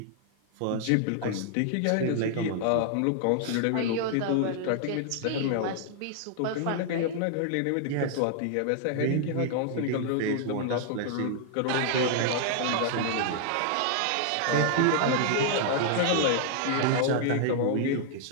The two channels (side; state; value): both; different; correlation 0.00